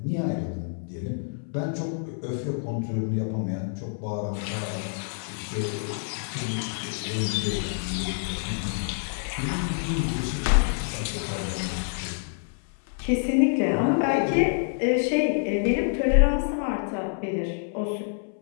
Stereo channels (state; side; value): silent; right; 60 dB below the other